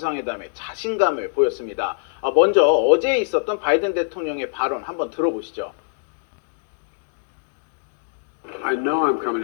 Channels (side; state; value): right; silent; digital silence